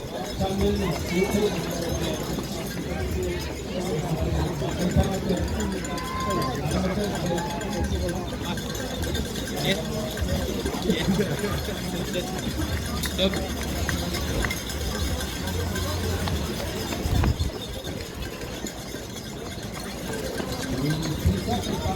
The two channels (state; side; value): identical; both; correlation 1.00